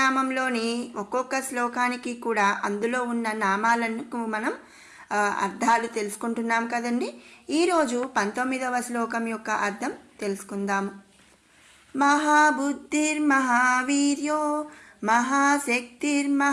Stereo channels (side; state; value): both; identical; correlation 1.00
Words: ఒక్కొక్క శ్లోకానికి కూడా అందులో ఉన్న నామాలకు మనం అర్థాలు తెలుసుకుంటున్నాం కదండి. ఈరోజు 19వ శ్లోకం యొక్క అర్థం తెలుసుకుందాము. మహాబుద్ధిర్మహావీర్యో